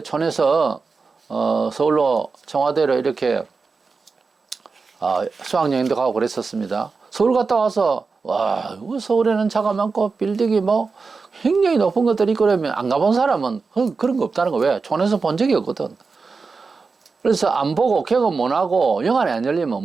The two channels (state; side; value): quieter; left; 4.5 dB